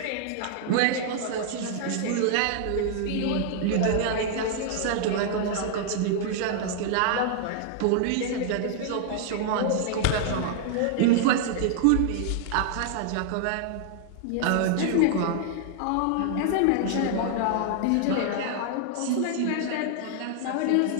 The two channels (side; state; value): both; different; correlation -0.01